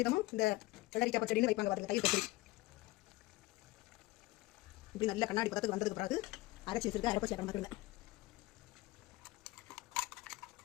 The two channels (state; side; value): quieter; right; 19.6 dB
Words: இந்த வெள்ளரிக்காய் பச்சடின்னு வைப்பாங்க. பாருங்க, தயிர் பச்சடி இப்படி நல்ல கண்ணாடி பதத்துக்கு வந்ததுக்கு பிறகு அரைச்சி வச்சிருக்க அரைப்ப சேர்க்க மாட்டுங்க.